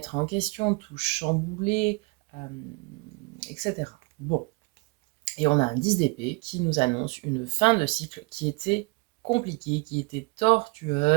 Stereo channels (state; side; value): quieter; left; 29.0 dB